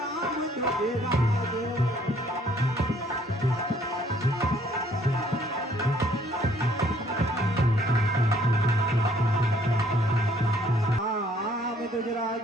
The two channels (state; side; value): normal; both; correlation 0.63